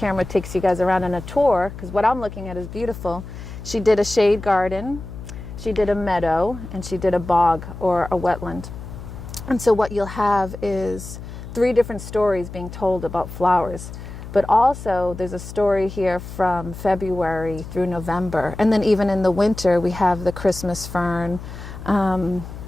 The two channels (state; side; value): noise; left; hum, 12 dB below the sound